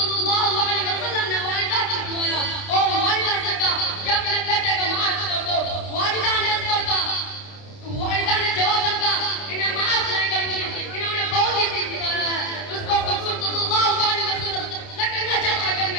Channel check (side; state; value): right; late; 30 ms